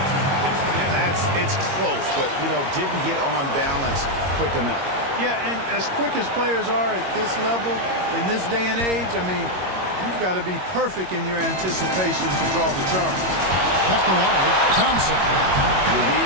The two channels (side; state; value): left; late; 22 ms